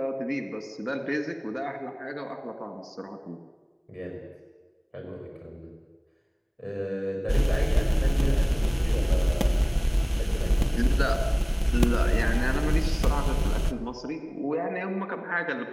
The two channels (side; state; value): both; identical; correlation 1.00